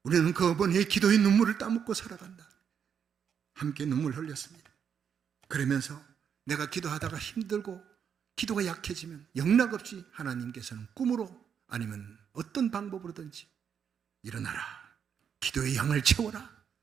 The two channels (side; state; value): left; quieter; 7.6 dB